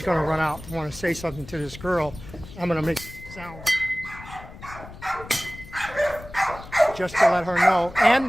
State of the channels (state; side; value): noise; left; rumble, 15 dB below the sound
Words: going to run out and want to say something to this girl. I'm going to make sounds just to let her know, and